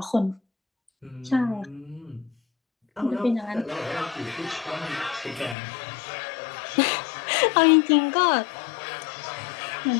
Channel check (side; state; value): right; drops out; at 5.6 s